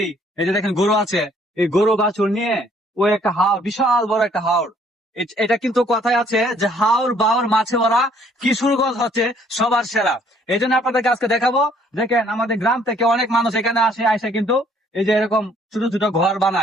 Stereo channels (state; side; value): normal; both; correlation 0.62